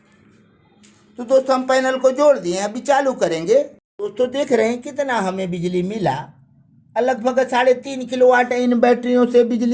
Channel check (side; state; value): both; identical; correlation 1.00